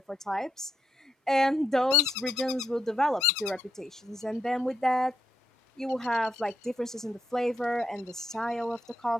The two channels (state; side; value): normal; both; correlation 0.80